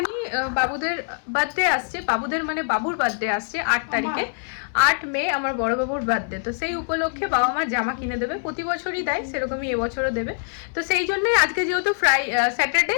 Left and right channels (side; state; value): right; silent; 63 dB below the other